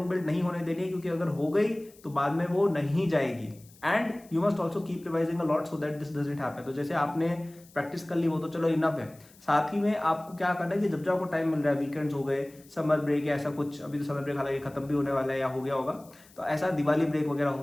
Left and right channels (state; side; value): noise; left; hiss, 26 dB below the sound